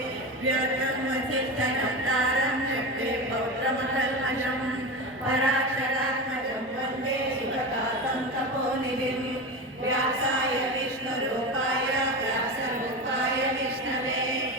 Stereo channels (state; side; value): normal; both; correlation 0.23